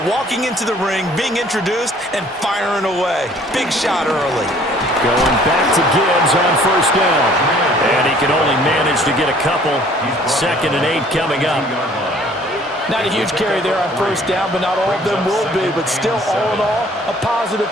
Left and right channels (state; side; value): normal; both; correlation 0.56